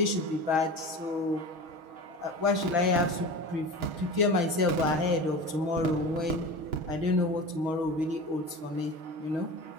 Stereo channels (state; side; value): late; left; 6.4 ms